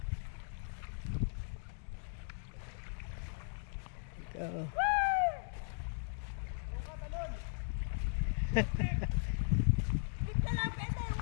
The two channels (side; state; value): right; silent; digital silence